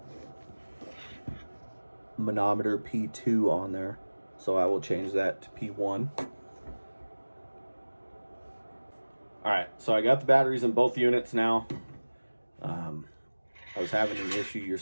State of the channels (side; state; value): both; inverted; correlation -1.00